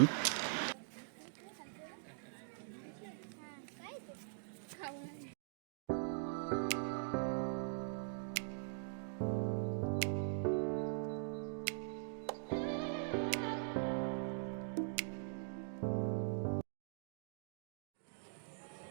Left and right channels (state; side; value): silent; left; digital silence